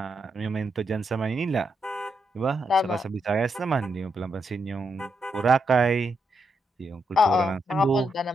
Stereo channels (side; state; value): both; normal; correlation 0.82